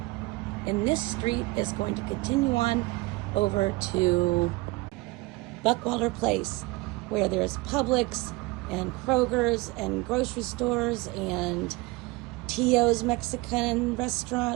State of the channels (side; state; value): left; quieter; 22.8 dB